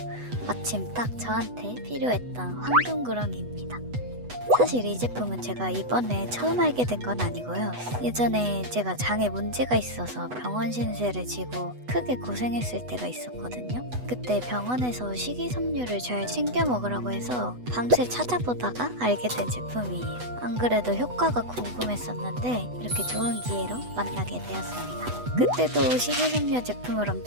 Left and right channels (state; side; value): late; left; 8.1 ms